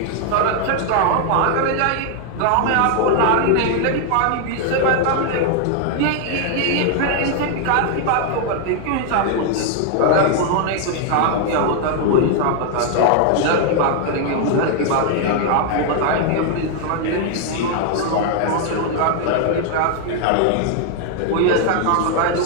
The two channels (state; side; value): different; both; correlation 0.00